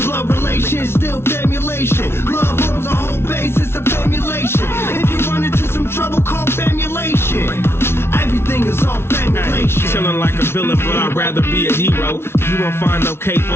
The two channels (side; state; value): right; late; 0.12 ms